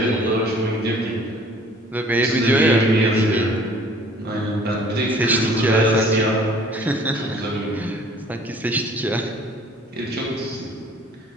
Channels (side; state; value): both; normal; correlation 0.53